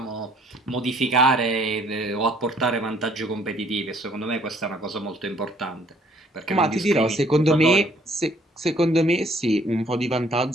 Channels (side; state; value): both; normal; correlation 0.61